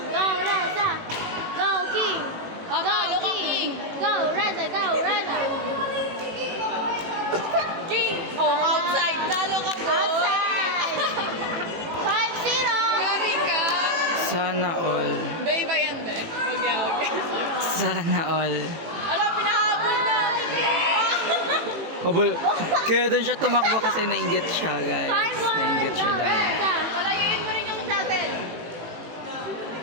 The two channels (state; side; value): late; left; 18 ms